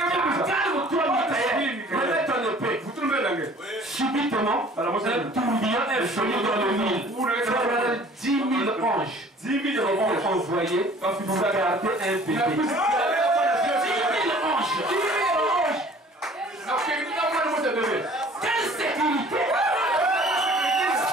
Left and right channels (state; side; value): normal; both; correlation 0.51